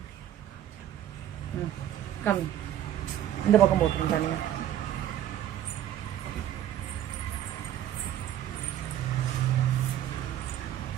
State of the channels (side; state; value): left; quieter; 11.5 dB